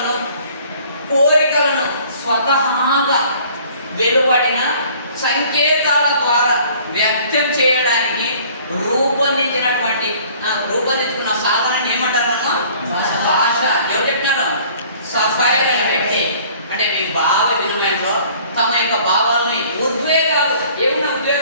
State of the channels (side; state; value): both; inverted; correlation -0.53